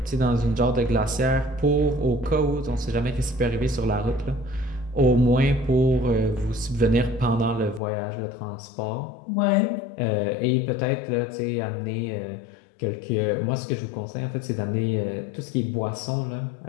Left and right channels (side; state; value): right; drops out; at 7.8 s